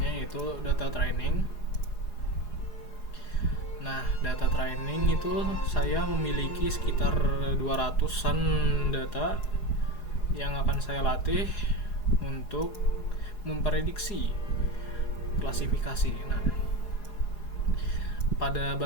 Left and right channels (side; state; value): right; late; 4.8 ms